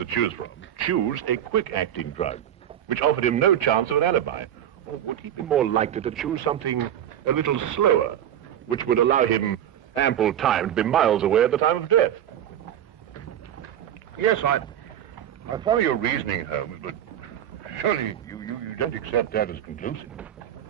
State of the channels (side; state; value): left; quieter; 10.6 dB